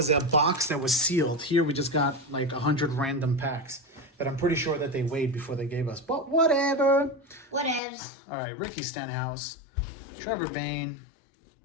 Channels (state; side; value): drops out; right; at 7.8 s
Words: a box that was sealed. Here we just got like 100 random packs that I'm pretty sure that they weighed before they gave us. But whatever. Whatevs. All right, Ricky Stenhouse, Trevor Bayne,